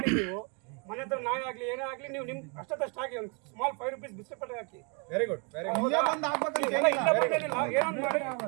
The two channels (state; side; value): quieter; left; 34.8 dB